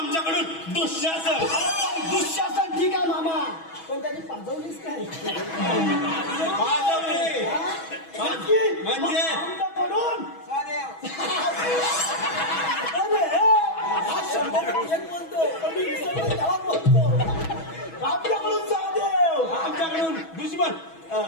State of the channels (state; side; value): late; right; 6.2 ms